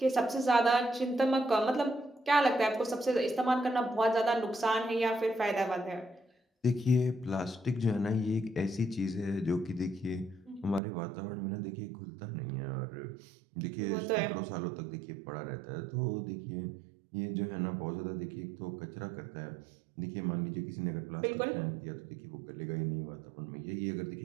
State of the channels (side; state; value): left; drops out; at 10.8 s